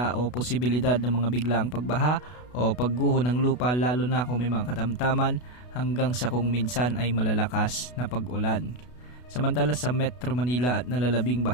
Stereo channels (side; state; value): right; late; 32 ms